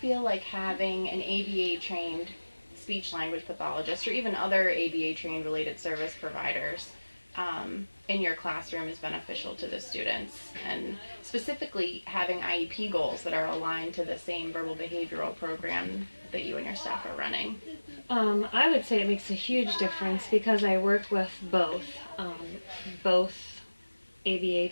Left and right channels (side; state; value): both; inverted; correlation -1.00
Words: like having an ABA trained speech language pathologist or even other ABA trained related service providers in your classroom is beneficial to the students, and specifically having IEP goals that are aligned to the same verbal behavioral program that you and your staff are running? I would say it makes a huge difference because I work with both ABA